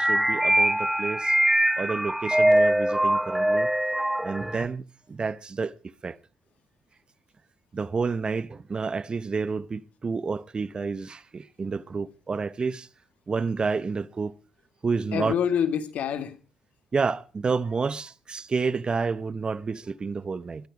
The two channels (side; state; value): both; normal; correlation 0.93